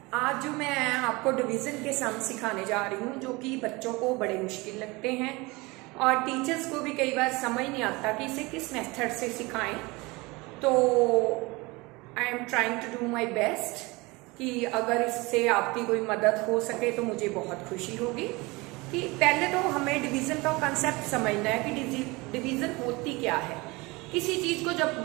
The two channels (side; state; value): left; quieter; 24.0 dB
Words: आज जो मैं आपको डिवीज़न के सम सिखाने जा रही हूँ जो कि बच्चों को बड़े मुश्किल लगते हैं और टीचर्स को भी कई बार समझ नहीं आता कि इसे किस मेथड से सिखाएं। तो I am trying to do my best कि अगर इससे आपकी कोई मदद हो सके तो मुझे बहुत खुशी होगी। कि पहले तो हमें डिवीज़न का कंसेप्ट समझना है कि डिवीज़न होती क्या है। किसी चीज़ को जब